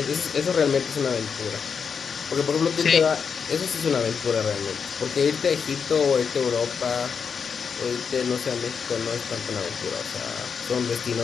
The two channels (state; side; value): quieter; right; 6.3 dB